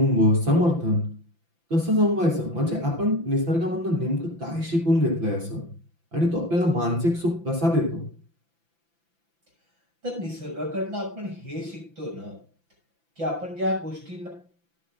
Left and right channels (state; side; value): late; left; 5.9 ms